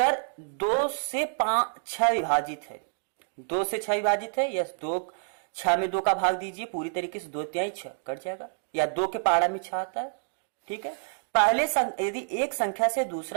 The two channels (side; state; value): left; silent; digital silence